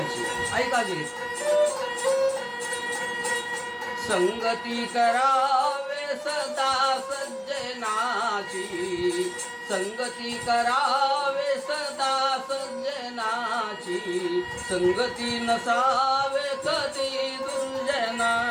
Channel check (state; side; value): identical; both; correlation 1.00